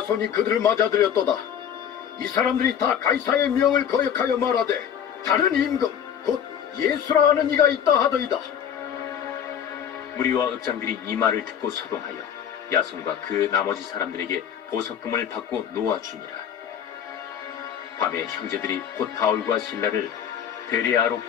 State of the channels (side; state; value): right; quieter; 8.8 dB